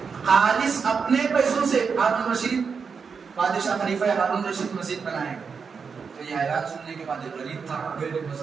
خالص اپنے پیسوں سے ہارون رشید بادشاہ خلیفہ ہارون رشید مسجد بنائے گا. تو یہ اعلان سننے کے بعد غریب تھا،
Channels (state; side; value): quieter; left; 5.7 dB